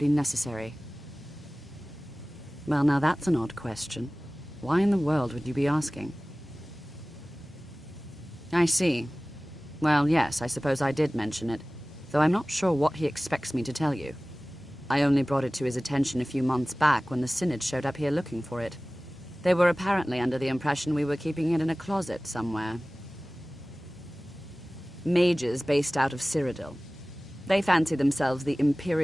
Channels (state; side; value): normal; both; correlation 0.98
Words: necessary. Well, now that's an odd question. Why in the world would you be asking? I see. Well, yes, I suppose I did mention it, though I'm not sure what he expects me to tell you. I only brought it to his attention a few months back when the Synod showed up here looking for it. They were apparently under the impression we were keeping it in a closet somewhere. Mages based out of Cyrodiil. They fancy themselves the